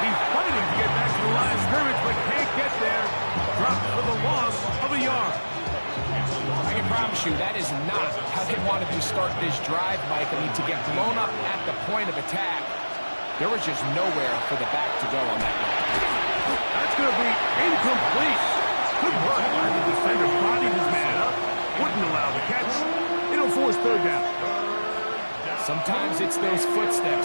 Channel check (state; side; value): inverted; both; correlation -1.00